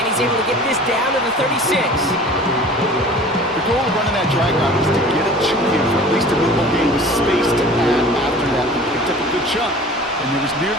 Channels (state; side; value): normal; both; correlation 0.43